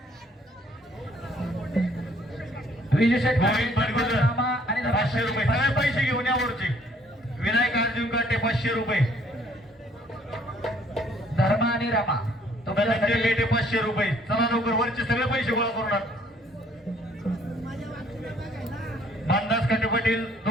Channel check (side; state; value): both; normal; correlation 0.62